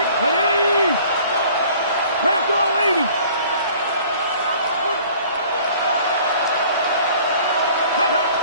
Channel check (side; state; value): both; inverted; correlation -0.51